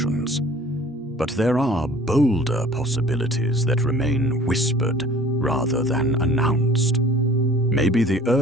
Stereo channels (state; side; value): normal; both; correlation 0.49